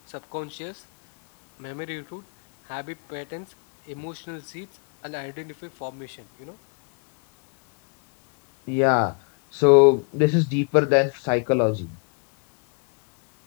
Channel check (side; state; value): right; quieter; 38.0 dB